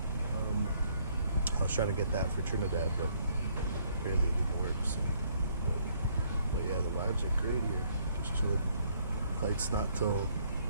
I was trying to get that for Trinidad, but apparently it didn't work. So, but yeah, the vibes are great here. Just chilling. Flight's not till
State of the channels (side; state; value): both; inverted; correlation -0.66